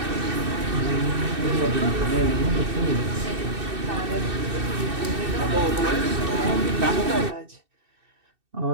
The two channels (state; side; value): late; left; 2.6 ms